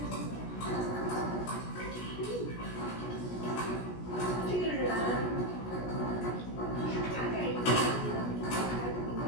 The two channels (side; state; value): right; late; 17 ms